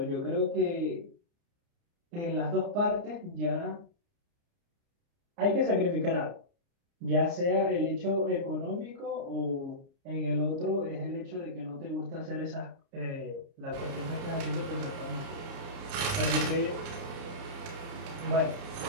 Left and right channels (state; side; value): late; left; 29 ms